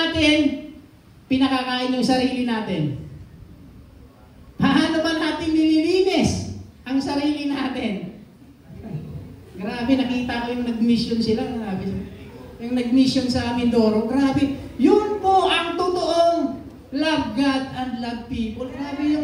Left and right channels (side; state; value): both; identical; correlation 1.00